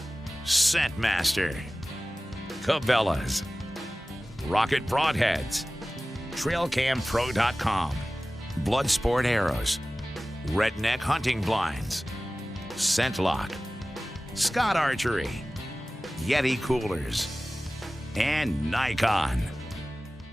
Scentmaster, Cabela's, Rocket Broadheads, TrailCamPro.com, Bloodsport Arrows, Redneck Hunting Blinds, ScentLock, Scott Archery, Yeti Coolers, and Nikon.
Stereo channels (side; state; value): both; normal; correlation 0.97